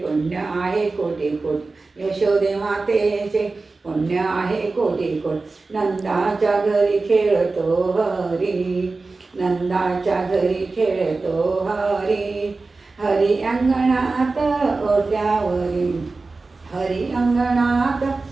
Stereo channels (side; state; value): left; quieter; 3.7 dB